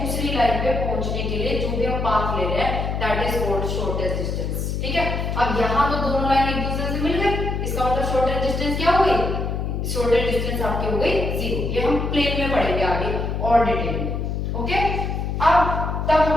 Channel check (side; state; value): left; noise; hum, 2 dB below the sound